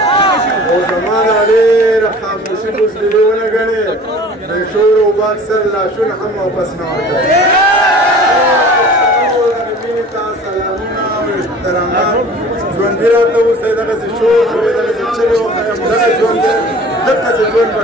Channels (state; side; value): normal; both; correlation 0.44